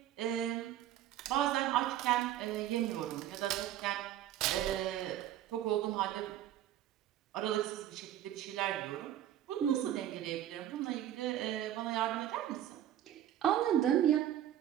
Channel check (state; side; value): quieter; left; 11.9 dB